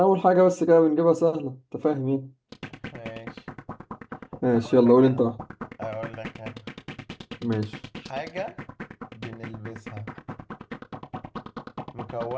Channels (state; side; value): identical; both; correlation 1.00